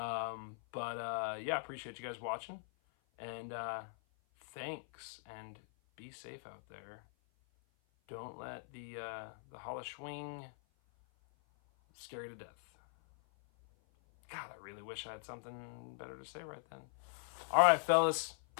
appreciate you guys watching, and thanks, and be safe out there. Don't let the HALLOWSCHWING scare you to death. God, I really wish I had something better to say right then. All right, fellas,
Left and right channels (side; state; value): right; silent; 50 dB below the other